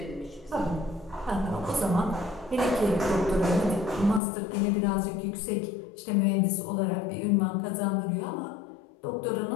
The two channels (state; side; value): drops out; right; at 4.2 s